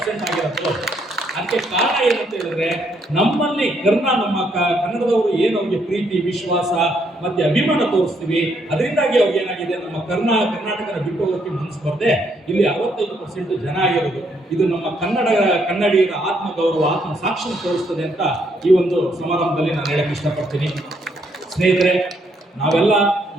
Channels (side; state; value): both; normal; correlation 0.72